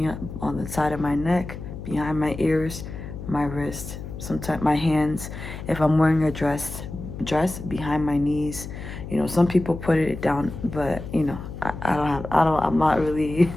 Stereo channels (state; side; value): noise; left; hum, 10 dB below the sound